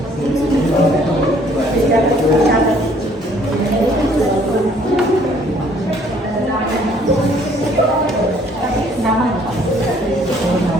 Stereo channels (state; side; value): normal; both; correlation 0.60